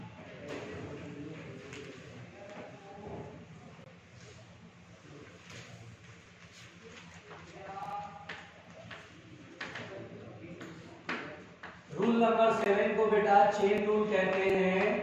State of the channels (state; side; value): identical; both; correlation 1.00